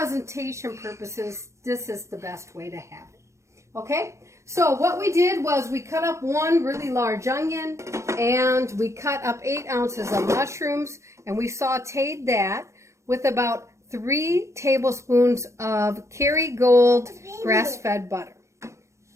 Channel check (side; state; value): left; late; 0.14 ms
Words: purposes, this is the best way to have it. Okay? So what we did was we cut up 1 really large onion, and we cut up 8 ounces of mushrooms, and we sauteed that with about 3 tablespoons of Kerrygold grass-fed butter.